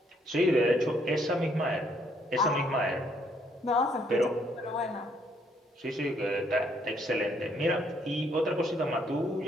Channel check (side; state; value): both; normal; correlation 0.69